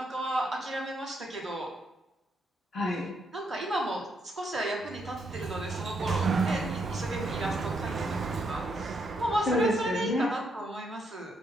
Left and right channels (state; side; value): normal; both; correlation 0.76